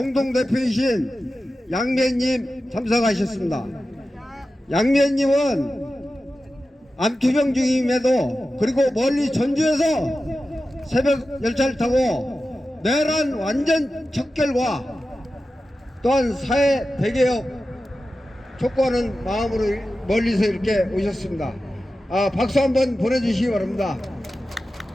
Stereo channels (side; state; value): both; normal; correlation 0.93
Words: 양미애님 참석하셨습니다. 양미애님은 암투병 중임에도 그리고 멀리 전주에서 새벽 열차를 타고 내란 완전 척결과 또한 사회 대개혁 촉구하는 마음으로 멀리서 이렇게 오셨습니다. 박수 한번 보내주시기 바랍니다.